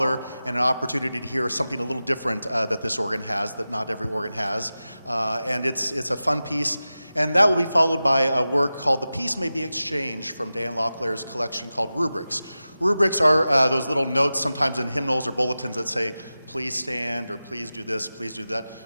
and an opportunity to hear something a little different that this organ has, that not every organ has. And it's a fun piece. And that will be followed by a work called The Peace May Be Exchanged from Dan Locklear's collection called Rubrics. Rubrics are those little notes sometimes in hymnals or bulletins that say, please stand, or please do this, please do that.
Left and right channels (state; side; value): inverted; both; correlation -0.94